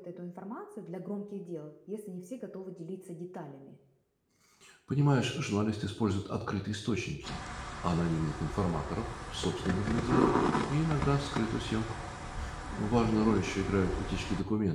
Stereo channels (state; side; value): identical; both; correlation 1.00